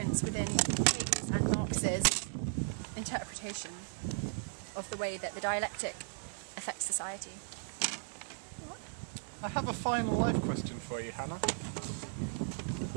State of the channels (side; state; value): left; silent; 54 dB below the other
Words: within Hegel's and Marx's interpretation of the way that the dialectic affects society. I have a final life question for you, Hannah.